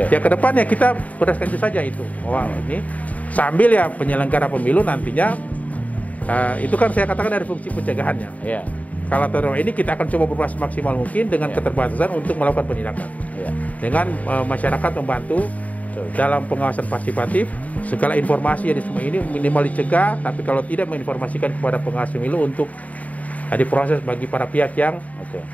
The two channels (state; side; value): late; right; 0.071 ms